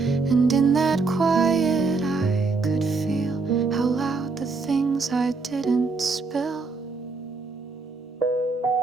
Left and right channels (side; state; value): left; quieter; 4.2 dB